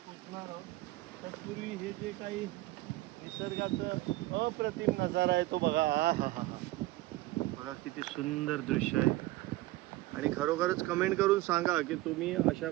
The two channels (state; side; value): quieter; left; 18.1 dB